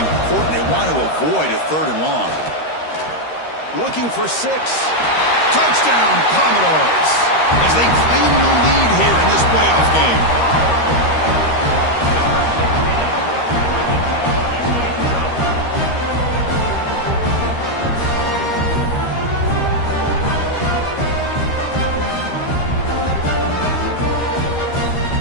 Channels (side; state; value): right; late; 13 ms